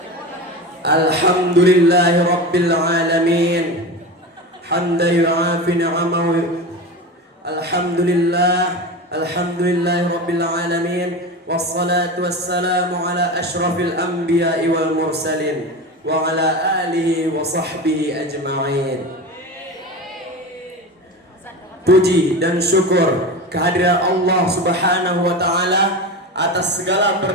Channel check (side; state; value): both; normal; correlation 0.26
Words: Alhamdulillahi rabbil alamin, hamdan yu'afi ni'amahu. Alhamdulillahi rabbil alamin, wassalatu wassalamu ala asyrafil anbiya'i wal mursalin wa ala alihi wa sahbihi ajma'in. Puji dan syukur kehadiran Allah Subhanahu wa Ta'ala atas segala